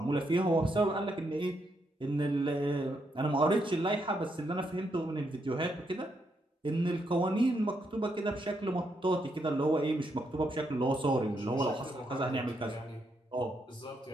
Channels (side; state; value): both; normal; correlation 0.79